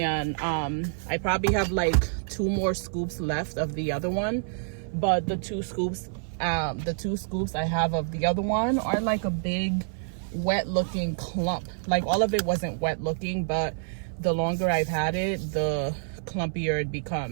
I probably have like 2 more scoops left of the other one, but the two scoops I have of the other one are like a big wet looking clump. Like all of it wasn't wet looking, but the longer I've had it, the clumpier it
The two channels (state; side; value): silent; left; 57 dB below the other